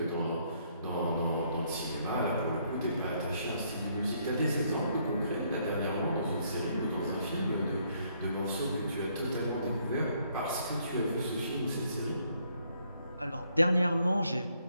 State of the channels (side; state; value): both; inverted; correlation -0.70